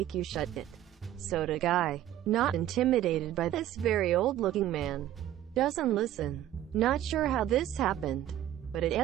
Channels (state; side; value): quieter; left; 12.5 dB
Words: you shut it." Soda guy, not intimidated by this very old-looking man, doesn't listen. Not sure how this happened, but it